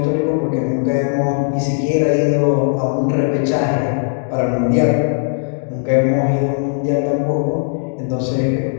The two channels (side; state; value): right; silent; digital silence